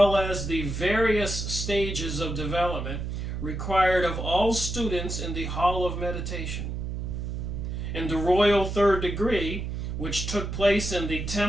as the various stages of development required of all students in the Hall of Meditation. In the royal third degree, which took place in the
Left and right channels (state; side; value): noise; right; hum, 4 dB below the sound